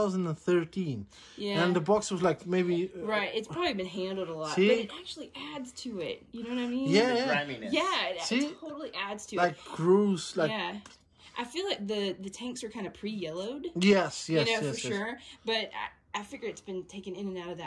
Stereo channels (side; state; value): both; identical; correlation 1.00